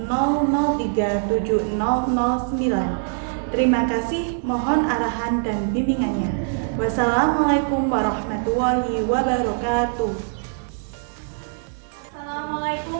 Terima kasih, mohon arahan dan bimbingannya. Wassalamualaikum warahmatullahi wabarakatuh.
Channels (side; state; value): left; silent; digital silence